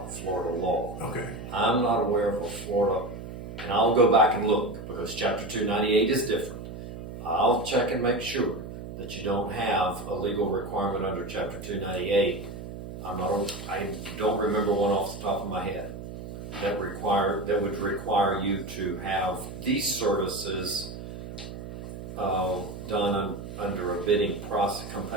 Florida law. Okay. I'm not aware of a Florida, and I'll go back and look, because Chapter 298 is different. I'll check and make sure that you don't have a legal requirement under Chapter 298. I don't remember one off the top of my head that would require you to have these services done under a bidding process,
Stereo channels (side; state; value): right; noise; hum, 10 dB below the sound